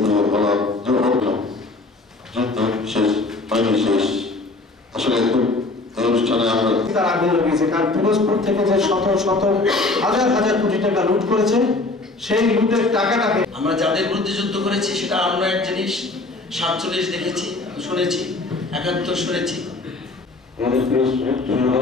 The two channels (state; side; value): quieter; right; 3.2 dB